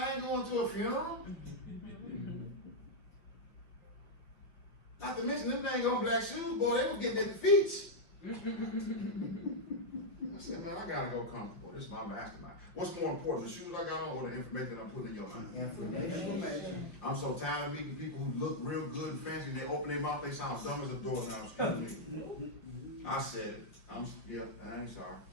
ain't going to a funeral. Not to mention, them things on black shoes, boy, they were getting at the feet. I said, man, I gotta go comfortable. This is my mastermind. What's more important, the shoes I got on or the information I'm putting in your mind? Information. I'm so tired of meeting people who look real good and fancy and they open their mouth, they sound dumb as a doorknob. Excuse me. I said it. Yeah, I ain't sorry.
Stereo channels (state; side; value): late; right; 5.8 ms